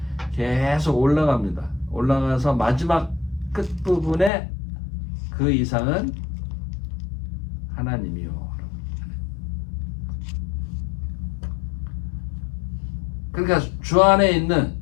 계속 올라갑니다. 올라가서 마지막 끝부분에 그 이상은 하나님이요. 그러니까 주 안에 있는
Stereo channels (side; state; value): right; drops out; at 4.3 s